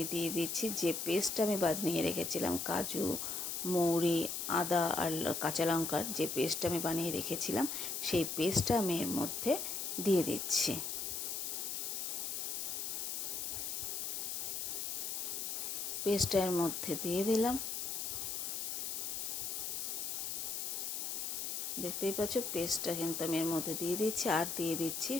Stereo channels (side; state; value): left; noise; hiss, 3 dB below the sound